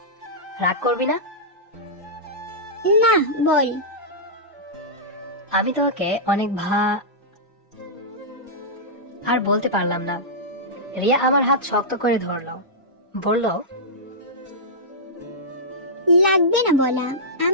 রাগ করবি না? না, বল। আমি তোকে অনেক আর বলতে পারলাম না। রিয়া আমার হাত শক্ত করে ধরলো, বলল, লাগবে না বলা,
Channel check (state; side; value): normal; both; correlation -0.13